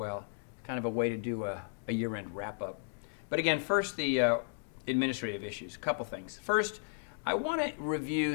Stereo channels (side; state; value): right; silent; digital silence